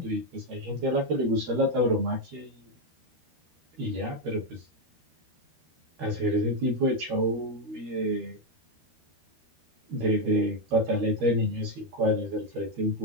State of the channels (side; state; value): left; late; 13 ms